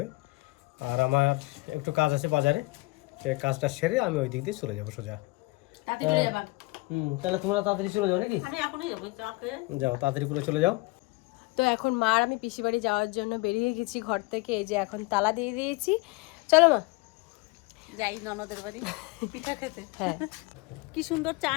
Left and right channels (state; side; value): quieter; right; 23.9 dB